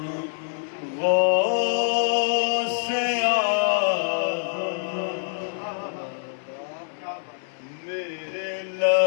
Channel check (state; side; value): silent; right; 59 dB below the other